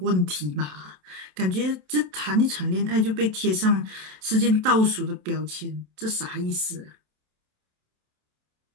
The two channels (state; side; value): late; left; 27 ms